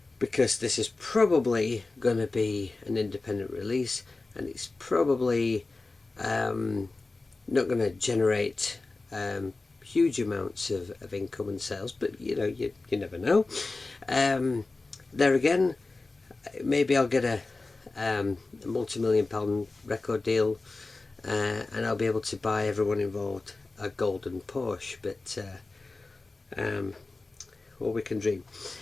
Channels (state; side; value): quieter; right; 3.4 dB